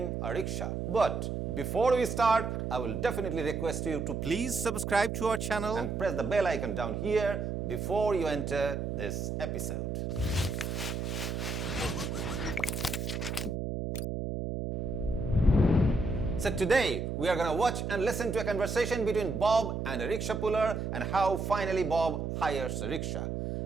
a rickshaw. But before we start, I will definitely request you to please subscribe to our channel and press the bell icon down here before you enter this episode. So today we are going to watch and listen to a conversation between Bob and a rickshaw puller and how finally Bob hires a rickshaw.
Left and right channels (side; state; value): right; noise; hum, 3 dB below the sound